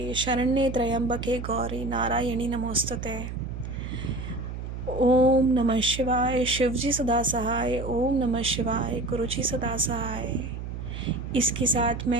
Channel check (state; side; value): noise; right; hum, 7 dB below the sound